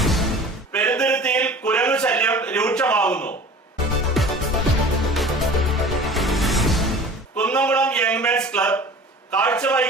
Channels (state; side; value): normal; both; correlation 0.41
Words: പെരുന്തുരുത്തിയിൽ കുരങ്ങു ശല്യം രൂക്ഷമാകുന്നു. കുന്നംകുളം യങ്മെൻസ് ക്ലബ്